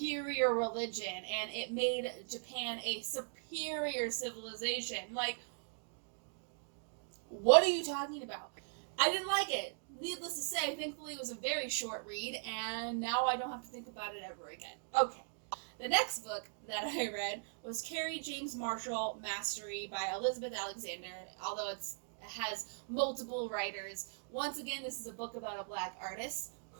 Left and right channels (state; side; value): silent; left; digital silence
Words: religion, and it made Japan a superior civilization. Like, What are you talking about? I didn't like it. Needless to say, thankfully it was a very short read, and now I don't have to think about it ever again. Okay. The next book that I read was Carrie James Marshall Mastery by Elizabeth Alexander, although it has multiple writers. Once again, this is a book about a black artist